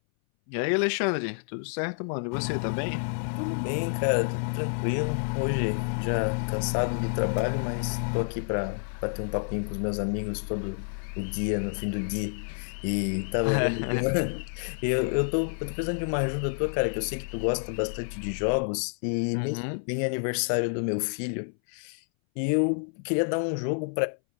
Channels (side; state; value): right; silent; 59 dB below the other